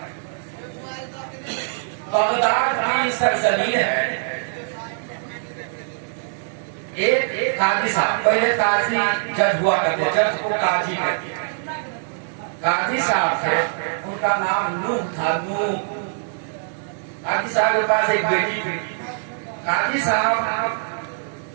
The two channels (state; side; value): silent; left; digital silence